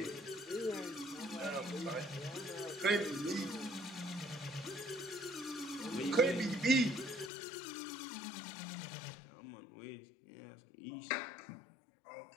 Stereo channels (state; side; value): drops out; right; at 7.3 s